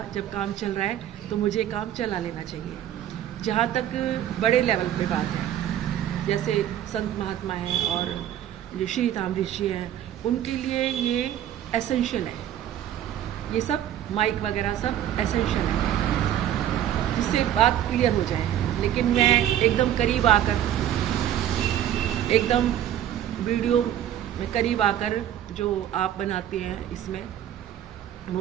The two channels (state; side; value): quieter; left; 11.2 dB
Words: जब काम चल रहा है, तो मुझे काम चला लेना चाहिए। जहाँ तक बड़े लेवल पे बात है, जैसे संत महात्मा हैं और जो श्री ताम्रऋषि हैं, उनके लिए ये एसेंशियल है, ये सब माइक वगैरह सब एसेंशियल है, जिससे बात क्लियर हो जाए। लेकिन मैं एकदम करीब आकर, एकदम वीडियो में करीब आकर, जो आप बनाते हैं इसमें